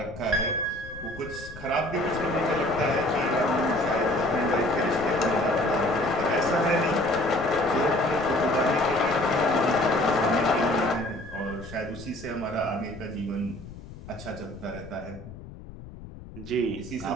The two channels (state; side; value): noise; left; rumble, 15 dB below the sound